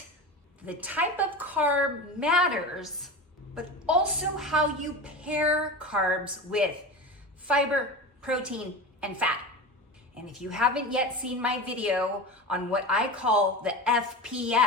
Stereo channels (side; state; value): both; normal; correlation 0.28